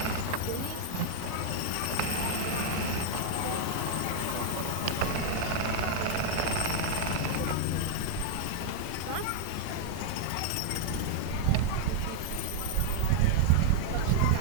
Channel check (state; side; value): different; both; correlation -0.01